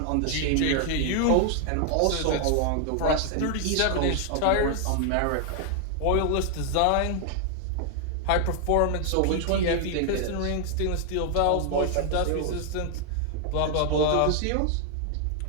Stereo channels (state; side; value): different; both; correlation 0.00